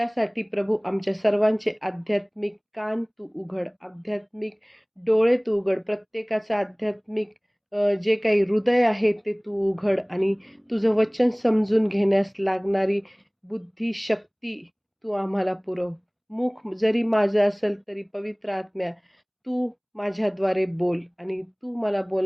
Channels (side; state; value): both; identical; correlation 1.00